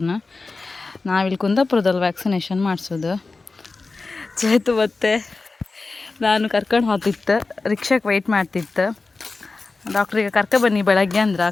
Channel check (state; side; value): quieter; right; 3.8 dB